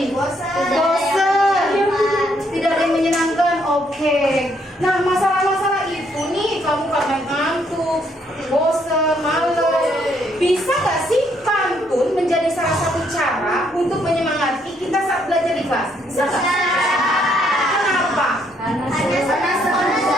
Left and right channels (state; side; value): normal; both; correlation 0.71